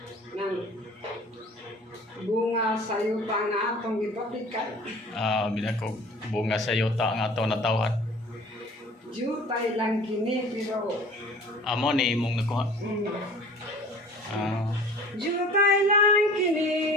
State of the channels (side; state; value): both; normal; correlation 0.45